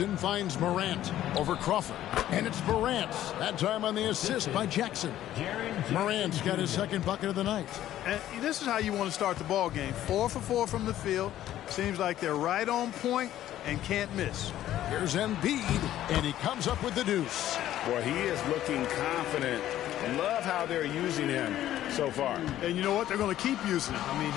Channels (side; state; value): right; quieter; 12.8 dB